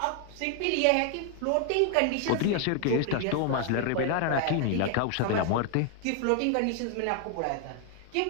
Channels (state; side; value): different; both; correlation 0.00